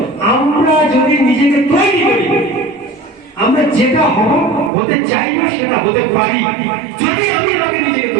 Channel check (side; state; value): left; drops out; at 4.7 s